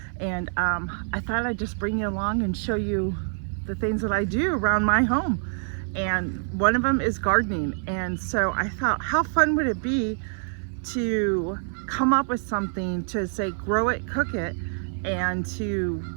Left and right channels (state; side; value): silent; left; 57 dB below the other